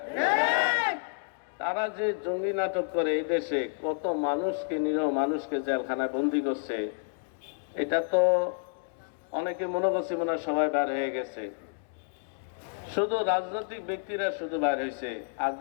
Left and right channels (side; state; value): right; silent; digital silence